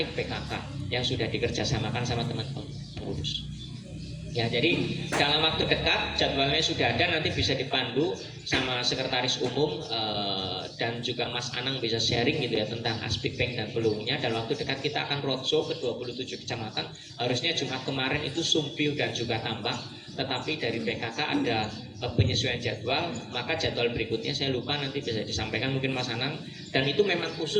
PKK yang sudah dikerjasamakan sama teman-teman pengurus. Ya, jadi dalam waktu dekat jadwalnya sudah ada, nanti bisa dipandu sama sekretaris umum dan juga Mas Anang bisa sharing gitu ya tentang Aspik Bank dan peluangnya. Dalam waktu dekat kita akan roadshow ke 27 kecamatan. Harusnya Jumat kemarin itu Sumpiu dan juga Tambak, tetapi dari PKK ada penyesuaian jadwal, maka jadwal berikutnya saya lupa, nanti bisa disampaikan mungkin Mas Anang. Dan itu memang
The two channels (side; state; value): both; identical; correlation 1.00